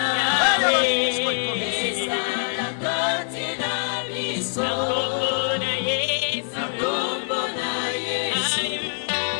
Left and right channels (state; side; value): silent; right; digital silence